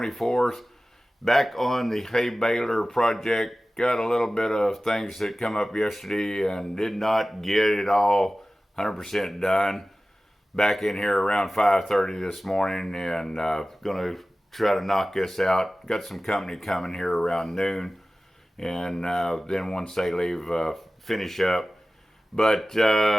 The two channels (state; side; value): normal; both; correlation 0.96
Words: Back on the Hay-Baler project. Got a little bit of things that come up yesterday and did not get it all 100% done. Back in here around 5:30 this morning and gonna try to knock this out. Got some company coming here around noon, and then once they leave, finish up. But